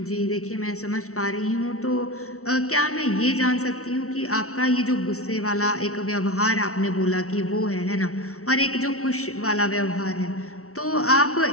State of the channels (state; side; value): late; right; 0.64 ms